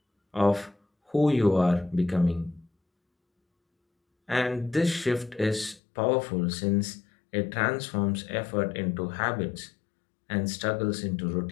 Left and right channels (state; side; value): drops out; right; at 5.8 s